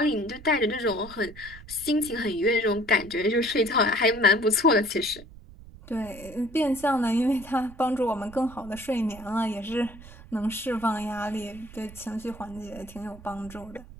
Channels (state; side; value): noise; right; rumble, 18 dB below the sound